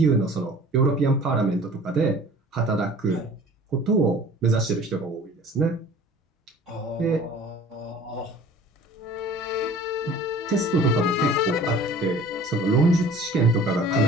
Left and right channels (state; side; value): normal; both; correlation 0.46